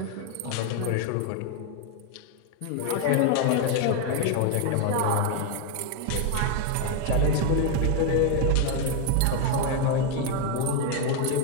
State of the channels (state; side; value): different; both; correlation 0.01